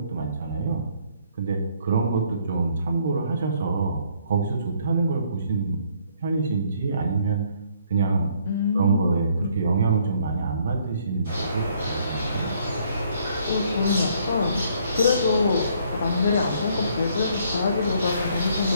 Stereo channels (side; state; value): both; inverted; correlation -0.65